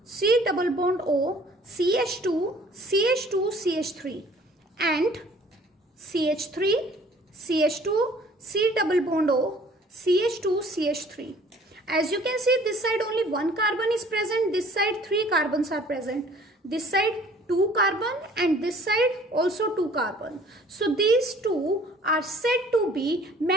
C double bond O, CH2, CH2, CH3 and CH3, CH2, C double bond O, CH2, CH3. As you can see, this side only one carbon is present, this side 3 carbons are present, this side 2 carbon and this side also 2 carbon. So these two are said to be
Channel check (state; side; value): normal; both; correlation 0.53